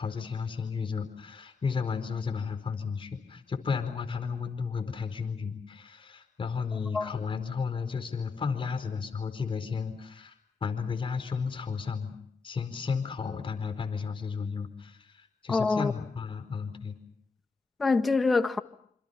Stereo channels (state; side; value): quieter; right; 4.7 dB